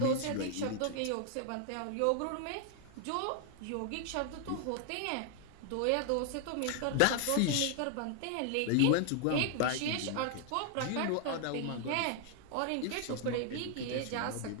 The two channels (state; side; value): different; both; correlation 0.00